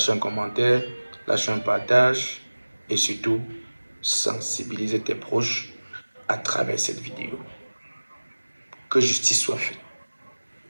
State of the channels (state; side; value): inverted; both; correlation -1.00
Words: un commentaire, lâche un partage et surtout, sensibiliser tes proches à travers cette vidéo. Que justice soit faite.